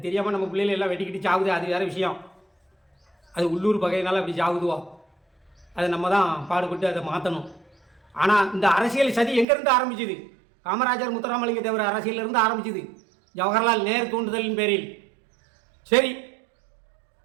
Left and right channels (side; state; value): left; drops out; at 9.5 s